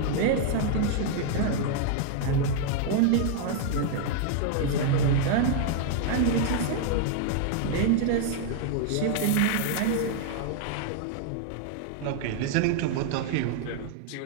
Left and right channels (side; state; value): both; different; correlation 0.00